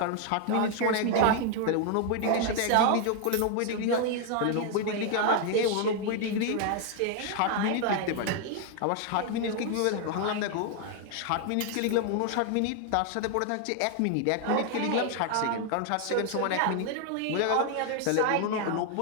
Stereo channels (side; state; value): both; different; correlation 0.00